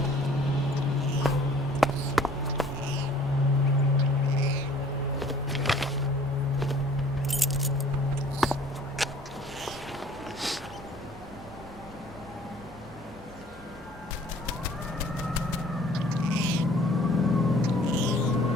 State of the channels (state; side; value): normal; both; correlation 0.53